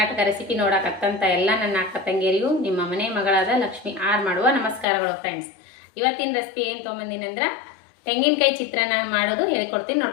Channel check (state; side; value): drops out; right; at 4.9 s